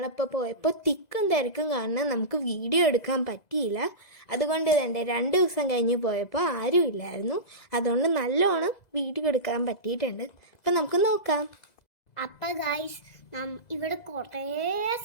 പോയപ്പോൾ തിക്കും തിരക്കും കാരണം നമുക്ക് വീഡിയോ എടുക്കാൻ പറ്റിയില്ല. അതുകൊണ്ട് തന്നെ 2 ദിവസം കഴിഞ്ഞ് പോയപ്പോൾ ആരും ഇല്ലായിരുന്നു. അതുകൊണ്ട് നല്ലോണം വീഡിയോ എടുക്കാൻ പറ്റിയിട്ടുണ്ട്. അപ്പം നമുക്ക് നോക്കാം. അപ്പം ഗൈസ്, ഇവിടെ കുറേ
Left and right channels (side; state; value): right; late; 2.0 ms